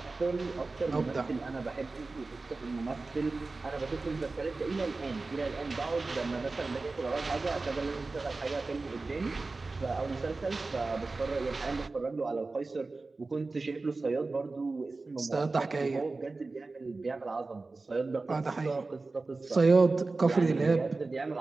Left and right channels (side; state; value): left; quieter; 3.6 dB